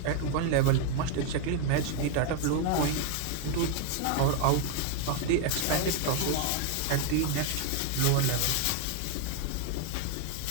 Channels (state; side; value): different; both; correlation 0.01